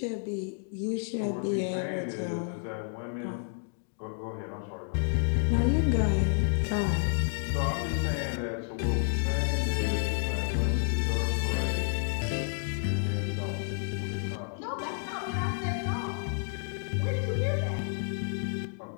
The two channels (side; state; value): right; silent; 58 dB below the other